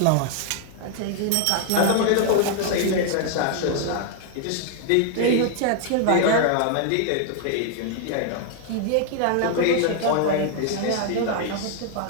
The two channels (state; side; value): different; both; correlation 0.00